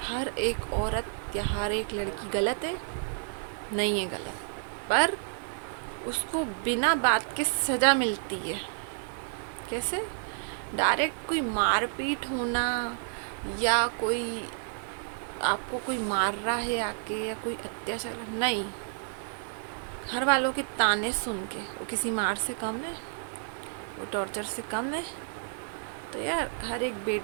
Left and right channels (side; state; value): left; silent; digital silence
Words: हर एक औरत या हर एक लड़की गलत है? नहीं है गलत, पर उसको बिना बात के सज़ा मिलती है। कैसे? डायरेक्ट कोई मारपीट होना, या कोई आपको कोई मार रहा है आके, या कोई अत्याचार, नहीं। घर वालों के ताने सुन के वो किसी मार से कम है, वो टॉर्चर से कम है। तो यार हर एक